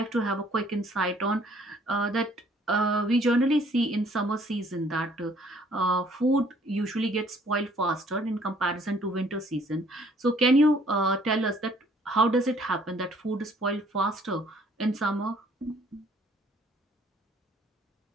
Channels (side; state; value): both; normal; correlation 0.60